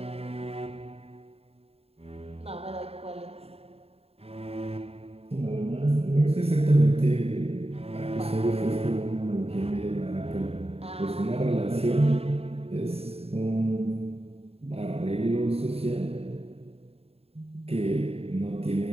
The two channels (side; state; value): left; late; 0.29 ms